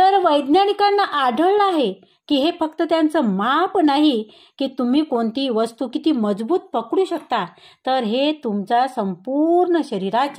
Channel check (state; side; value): identical; both; correlation 1.00